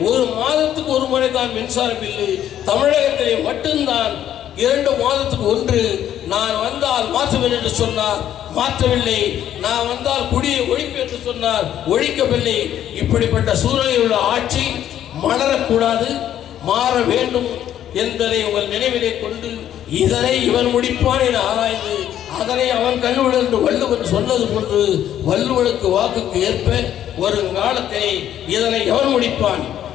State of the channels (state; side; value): quieter; right; 11.0 dB